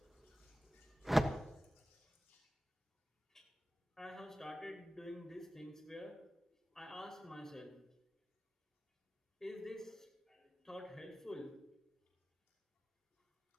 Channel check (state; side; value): normal; both; correlation 0.96